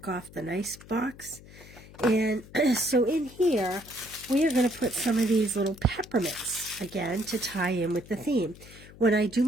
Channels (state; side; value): noise; left; hum, 20 dB below the sound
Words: off the nice box. And so in here, we are going to put some of these little peppermints, again, to tie in with the theme. When I do